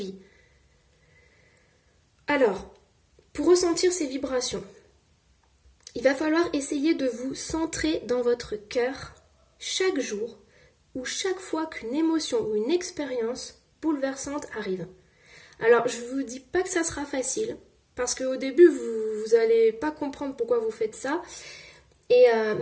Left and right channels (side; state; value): both; identical; correlation 1.00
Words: Alors, pour ressentir ces vibrations, il va falloir essayer de vous centrer dans votre cœur chaque jour ou chaque fois qu'une émotion ou une expérience bouleversante arrive. Alors, je ne vous dis pas que ça sera facile, parce qu'au début, vous n'allez pas comprendre pourquoi vous faites ça,